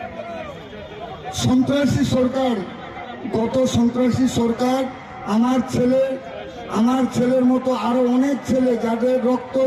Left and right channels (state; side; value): identical; both; correlation 1.00